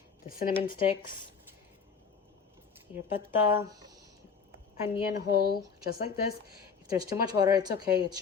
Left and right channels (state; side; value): quieter; right; 5.9 dB